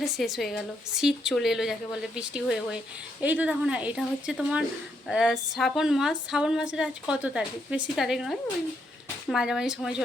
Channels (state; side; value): normal; both; correlation 0.76